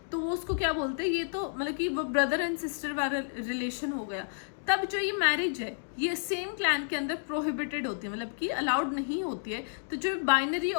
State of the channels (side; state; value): right; silent; digital silence